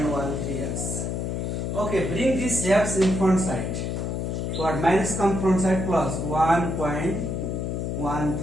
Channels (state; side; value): noise; left; hum, 2 dB below the sound